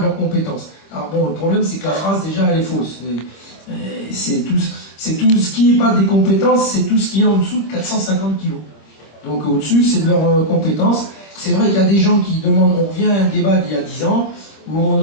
leurs compétences. Alors bon, le problème c'est que la phrase déjà elle est fausse. C'est tout ce qui n'est pas des compétences, c'est tout ce qui est en dessous de 450 kg. Donc au-dessus, c'est de leurs compétences. C'est vrai qu'il y a des gens qui demandent, on revient à un débat d'il y a 10 ans, où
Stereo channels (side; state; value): right; late; 26 ms